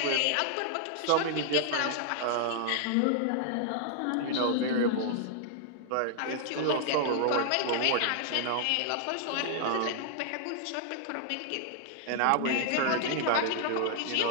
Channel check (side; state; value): both; different; correlation 0.00